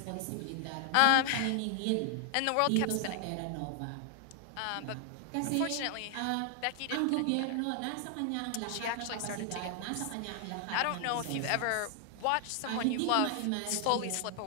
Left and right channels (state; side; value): different; both; correlation 0.00